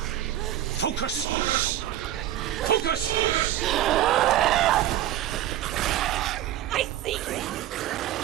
Focus! Focus! I see you!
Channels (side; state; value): left; quieter; 12.7 dB